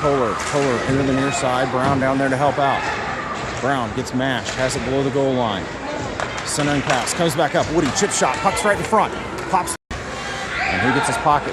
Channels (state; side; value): identical; both; correlation 1.00